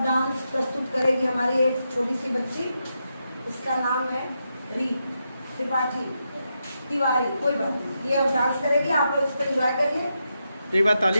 डांस प्रस्तुत करेगी हमारी एक छोटी सी बच्ची। इसका नाम है री त्रिपाठी तिवारी। कोई बात नहीं, ये अब डांस करेगी, आप लोग इसको एंजॉय करिए। तो एक बार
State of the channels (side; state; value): both; inverted; correlation -0.85